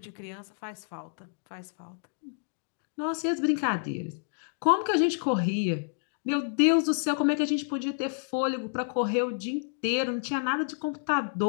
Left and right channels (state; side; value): silent; right; digital silence